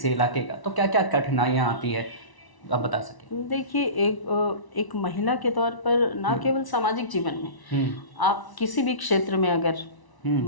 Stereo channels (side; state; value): right; late; 1.0 ms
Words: इलाके का, तो क्या क्या कठिनाइयाँ आती है, आप बता सकें? देखिए, एक महिला के तौर पर ना केवल सामाजिक जीवन में, आप किसी भी क्षेत्र में अगर